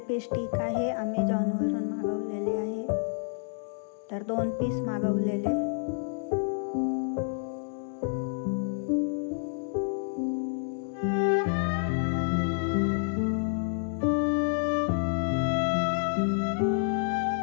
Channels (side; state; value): right; silent; 59 dB below the other